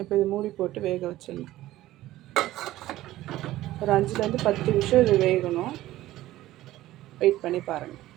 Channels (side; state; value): left; quieter; 15.5 dB